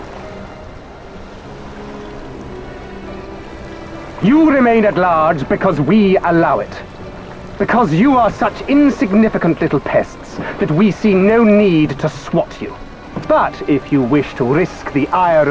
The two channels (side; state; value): both; identical; correlation 1.00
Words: You remain at large because we allow it. Because you are such insignificant little pests that we see no need to swat you. But if you wish to risk the ire